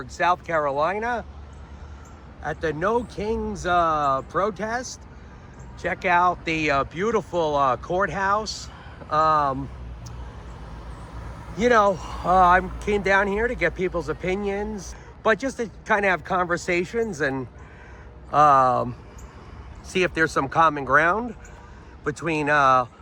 South Carolina at the No Kings protest. Check out the beautiful courthouse. I came down here to get people's opinions, but just to kind of have conversations and see if there's some common ground between a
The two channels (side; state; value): both; identical; correlation 1.00